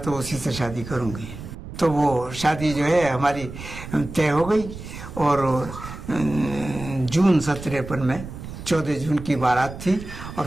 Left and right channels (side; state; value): right; noise; rumble, 11 dB below the sound